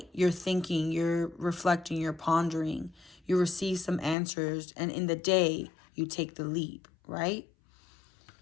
you're thinking, you're reflecting, you're pondering, you receive some answers, and in the day, you take the leap, right?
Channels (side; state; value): right; drops out; at 4.2 s